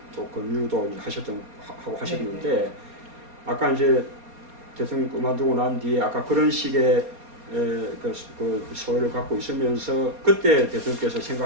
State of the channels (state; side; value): late; left; 4.2 ms